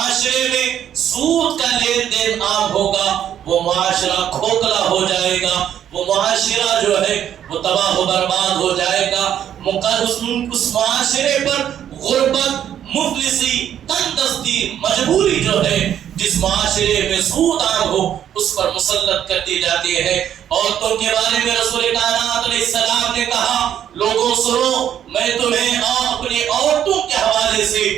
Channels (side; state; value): left; quieter; 10.0 dB